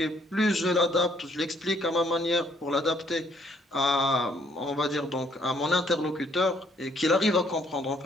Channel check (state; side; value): normal; both; correlation 0.65